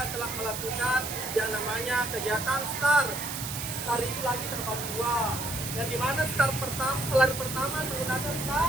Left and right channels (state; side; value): noise; right; hiss, 6 dB below the sound